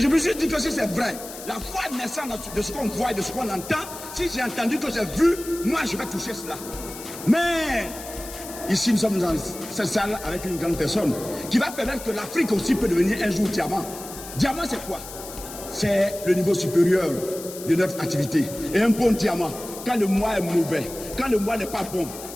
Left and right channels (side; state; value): left; noise; hiss, 13 dB below the sound